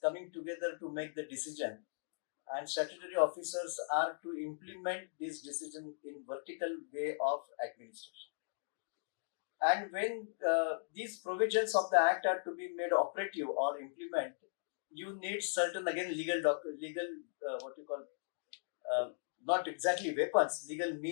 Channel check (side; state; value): right; silent; digital silence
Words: coming together to make the decision, and statutory officers are to implement this decision in vertical way of administration. And when these provisions of the act are to be made operative or implement, you need certain again legal what you call not exactly weapons, legal